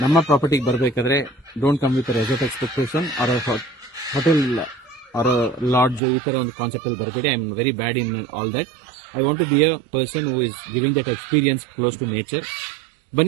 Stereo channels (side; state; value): left; drops out; at 6.0 s